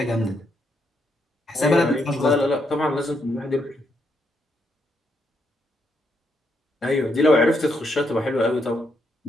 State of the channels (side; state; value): both; normal; correlation 0.78